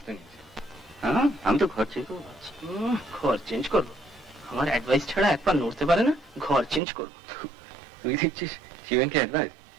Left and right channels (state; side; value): drops out; left; at 6.8 s